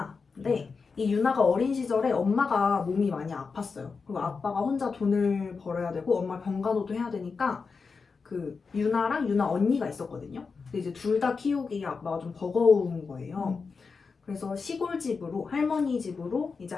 이 유나가 어린 시절에 엄마가 몸이 많이 아팠어요. 그리고 아빠가 혼자 돈을 벌어야 되고 엄마 병간호도 해야 되니까 그 유나랑 유나 언니가 있었거든요. 근데 이제 둘 다 키우기 아빠가 좀 버거운 거예요. 그래서 시골집으로 할머니 집으로 이제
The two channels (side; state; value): right; quieter; 4.9 dB